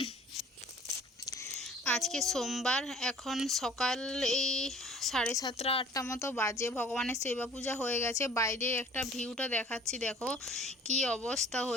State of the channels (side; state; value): both; normal; correlation 0.50